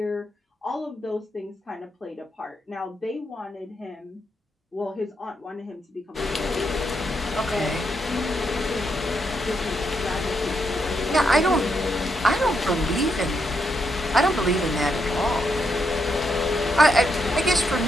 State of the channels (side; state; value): both; normal; correlation 0.80